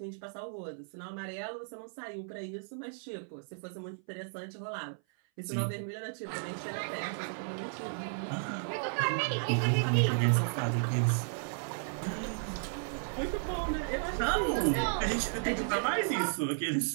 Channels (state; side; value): silent; left; 55 dB below the other